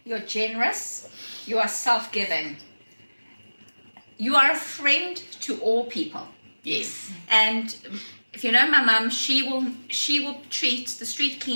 you're generous, you are self-giving. You are a friend to all people. Yes. And if you know my mum, she will treat the street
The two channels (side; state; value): both; inverted; correlation -1.00